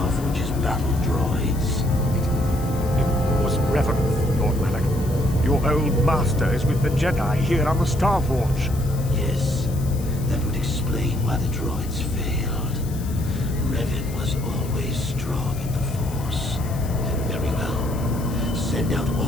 Forge's battle droids. It was Revan, Lord Malak. Your old master is with the Jedi here on the Star Forge. Yes, that would explain why the droids failed. Revan was always strong in the Force. Very well. Send out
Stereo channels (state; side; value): noise; left; hiss, 17 dB below the sound